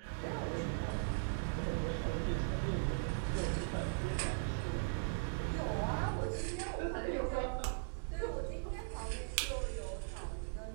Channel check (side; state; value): left; silent; digital silence